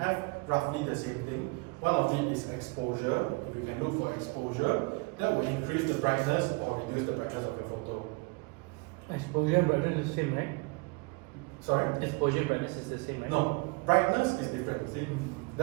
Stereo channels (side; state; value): left; quieter; 28.5 dB